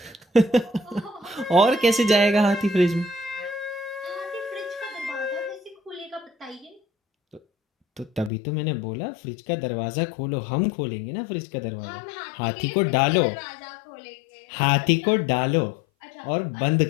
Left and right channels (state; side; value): drops out; right; at 8.3 s